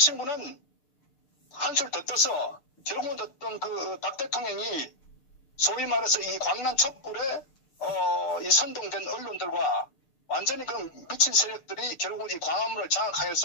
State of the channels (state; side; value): late; right; 6.7 ms